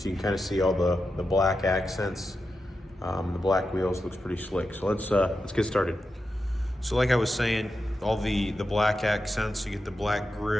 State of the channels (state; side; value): normal; both; correlation 0.89